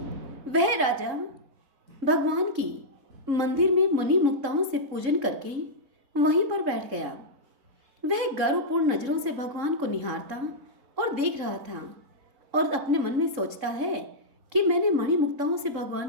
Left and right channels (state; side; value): late; left; 3.7 ms